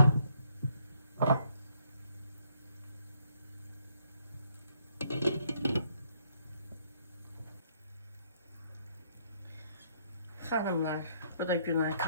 Xanımlar, bu da Günay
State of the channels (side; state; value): both; inverted; correlation -0.69